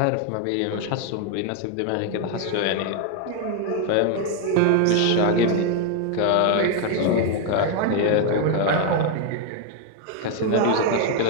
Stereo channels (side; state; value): both; different; correlation 0.01